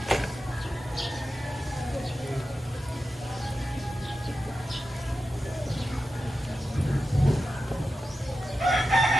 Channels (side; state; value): both; normal; correlation 0.90